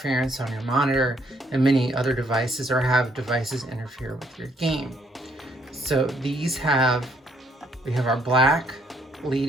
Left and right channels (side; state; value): both; normal; correlation 0.68